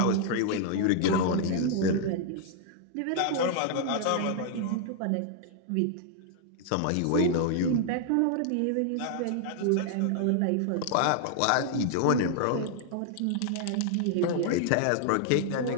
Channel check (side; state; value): both; different; correlation 0.00